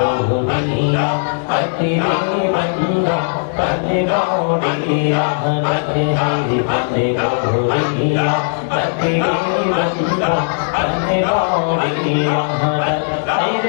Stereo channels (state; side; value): silent; right; 62 dB below the other